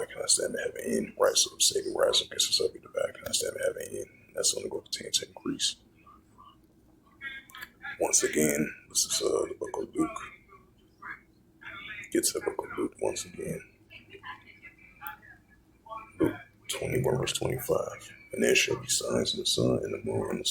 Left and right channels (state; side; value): identical; both; correlation 1.00